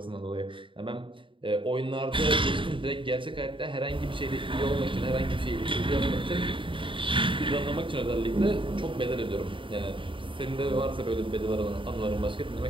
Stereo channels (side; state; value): left; late; 0.25 ms